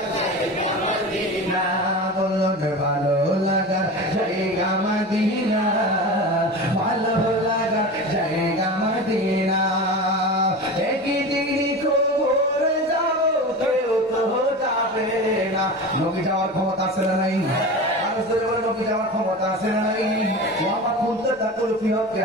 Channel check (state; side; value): normal; both; correlation 0.30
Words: জায়গা মদিনা, বলো ভালো লাগার জায়গা মদিনা, ভালো লাগার জায়গা মদিনা। একদিন কবর যাব কেউ তো যাবে না। নবী যাওয়ার ক্ষমতা আছে না নাই? নবী যাওয়ার ক্ষমতা আছে না নাই? আমার খুলতে তাকুল ফিহকে